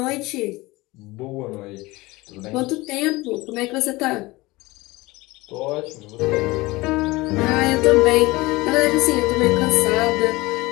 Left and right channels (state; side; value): quieter; right; 21.3 dB